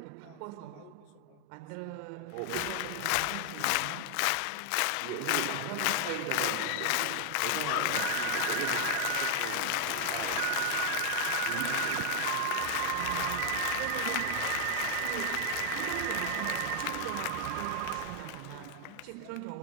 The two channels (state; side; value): different; both; correlation 0.00